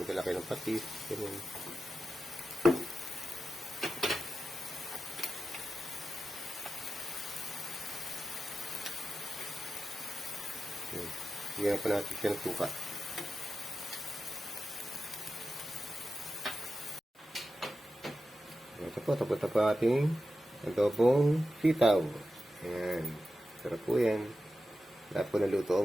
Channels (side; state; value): both; normal; correlation 0.91